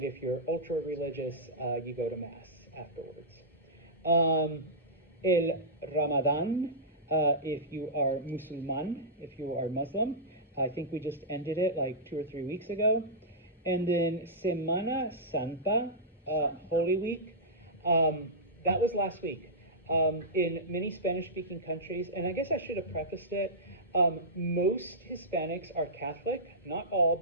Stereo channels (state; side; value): normal; both; correlation -0.15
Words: if you're ultra-religious, you go to Mass afterwards. El Ramadan, if you are Musulman, if you are Muslim. I think we just ended it like 2 or 3 weeks ago. And then Semana Santa, Holy Week. That was last week. In many Spanish-speaking countries, and I guess I should have prefaced it, most Hispanics are Catholic, not all,